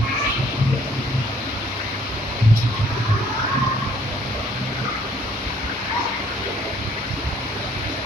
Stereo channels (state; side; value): normal; both; correlation 0.61